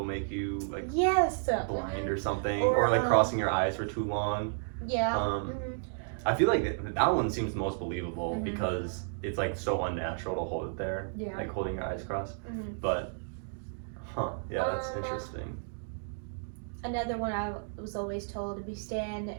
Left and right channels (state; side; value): silent; left; digital silence